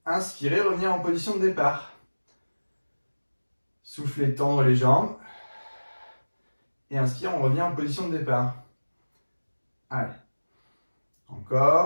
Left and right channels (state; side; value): inverted; both; correlation -1.00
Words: Inspirez, revenir en position de départ. Soufflez, tendre les jambes. Et inspire, on revient en position de départ. Allez.